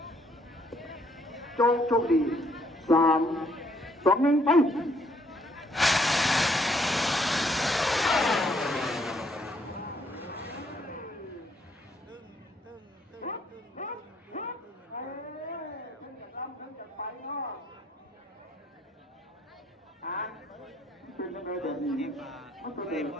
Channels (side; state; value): both; normal; correlation 0.68